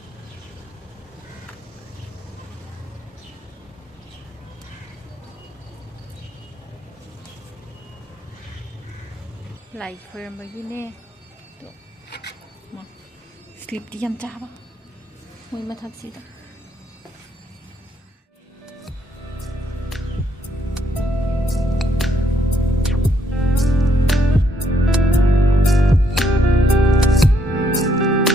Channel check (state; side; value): normal; both; correlation 0.73